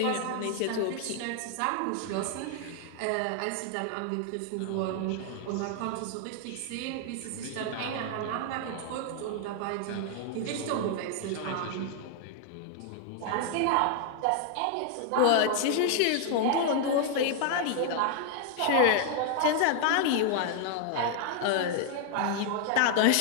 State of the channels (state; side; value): different; both; correlation 0.00